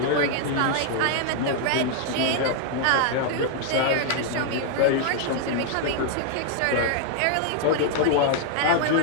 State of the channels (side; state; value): both; different; correlation 0.00